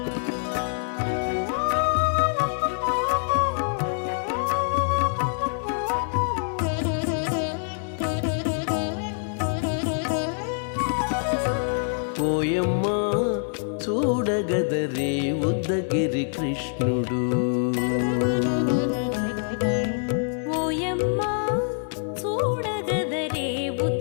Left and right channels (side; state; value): right; silent; 62 dB below the other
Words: ఓయమ్మా చూడగదరే ఉద్దగిరి కృష్ణుడు ఓయమ్మా చూడగదరే